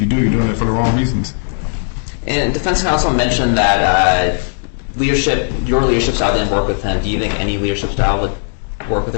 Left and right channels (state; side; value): silent; right; digital silence